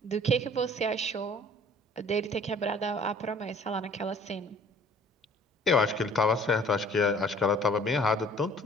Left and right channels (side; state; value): both; normal; correlation 0.53